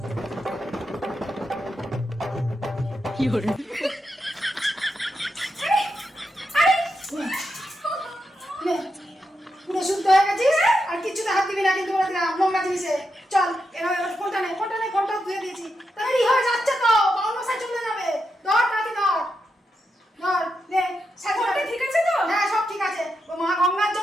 নে, পুরো শুদ্ধ হয়ে গেছিস, আর কিচ্ছুতে হাত দিবি না কিন্তু বলে দিলাম, নোংরা জিনিসে। চল, এবার ফোনটা নে, ফোনটা ধুয়ে দিয়েছি। তাড়াতাড়ি হয়ে যাচ্ছে তো, বাউল মশাই চলে যাবে। ধর, তাড়াতাড়ি ধর। ধর, নে, ফোনটা ঠিক আছে তো? হ্যাঁ, সব ঠিক আছে। ও মা গঙ্গার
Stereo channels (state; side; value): normal; both; correlation 0.85